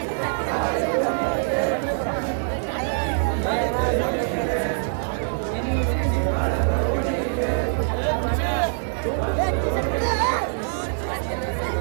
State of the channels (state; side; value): silent; left; digital silence